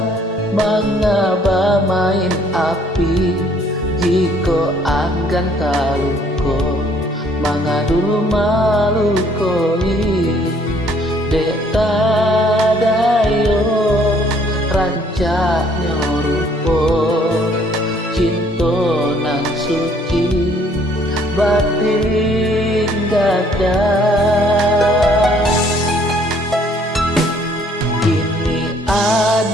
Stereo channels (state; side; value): normal; both; correlation 0.62